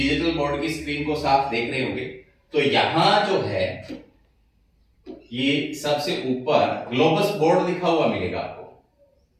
बोर्ड की स्क्रीन को साफ देख रहे होंगे। तो यहां जो है ये सबसे ऊपर ग्लोबस बोर्ड लिखा हुआ मिलेगा आपको।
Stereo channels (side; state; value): both; identical; correlation 1.00